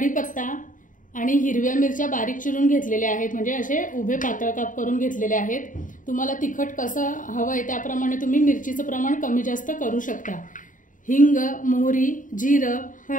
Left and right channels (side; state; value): right; late; 0.38 ms